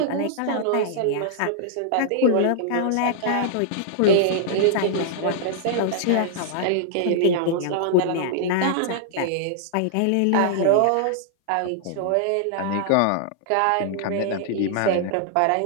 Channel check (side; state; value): both; different; correlation -0.01